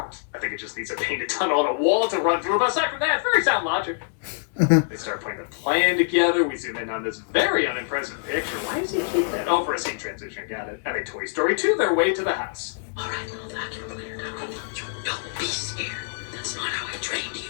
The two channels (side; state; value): right; silent; digital silence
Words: I think it just needs a painted tunnel on a wall to run through, but aside from that, very sound logic. They start putting the plan together. We zoom in on this very unimpressive picture. Why does he keep that? Oh, for a scene transition, got it. And they Toy Story 2 their way to the house. All right, little vacuum cleaner. You don't be scared. That's not how I trained you.